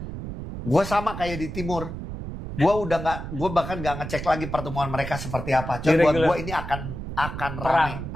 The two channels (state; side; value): noise; right; rumble, 8 dB below the sound